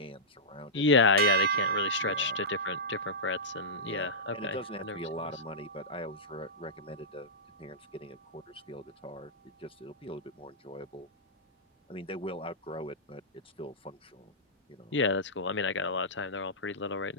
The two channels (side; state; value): both; normal; correlation -0.13